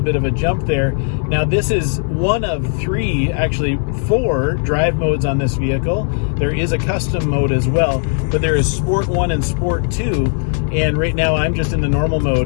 of a jump there. Now, this is one of three, actually 4 drive modes on this vehicle. There is a custom mode as well, but there is Sport 1 and Sport 2, and right now I'm just in the normal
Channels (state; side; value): silent; right; 56 dB below the other